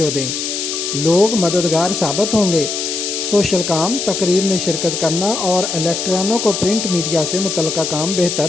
दें। लोग मददगार साबित होंगे। सोशल काम, तकरीब में शिरकत करना और इलेक्ट्रॉनों को प्रिंट मीडिया से मुतल्लिका काम बेहतर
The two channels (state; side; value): noise; left; hiss, 3 dB below the sound